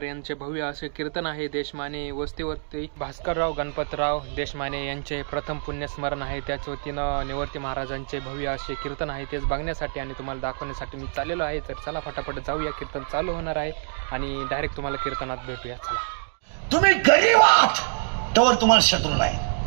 यांचे भव्य असे कीर्तन आहे. देशमाने वस्तीवरती भास्करराव गणपतराव देशमाने यांचे प्रथम पुण्यस्मरण आहे. त्याच वतीनं निवर्ती महाराजांचे भव्य असे कीर्तन आहे. तेच बघण्यासाठी आणि तुम्हाला दाखवण्यासाठी मी चाललेलो आहे. तर चला फटाफट जाऊया, कीर्तन चालू होणार आहे आणि डायरेक्ट तुम्हाला कीर्तनात भेटूया. चला. तुम्ही गरीब आहात तर तुम्हाला शत्रू नाही.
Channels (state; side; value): silent; left; digital silence